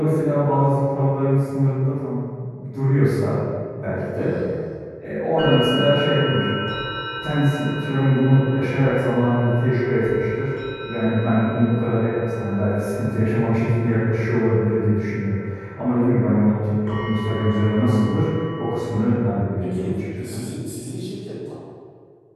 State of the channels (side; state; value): both; identical; correlation 1.00